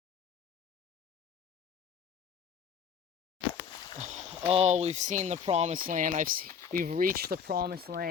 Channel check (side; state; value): right; quieter; 7.0 dB